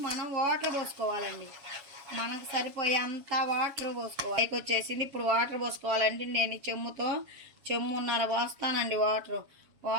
మనం వాటర్ పోసుకోవాలండి, మనకు సరిపోయే అంత వాటర్ పోసుకోవాలి. పైకి వచ్చేసింది. ఇప్పుడు వాటర్ పోసుకోవాలండి. నేను ఈ చెమ్మున్నర పోస్తానండి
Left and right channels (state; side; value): late; left; 7.2 ms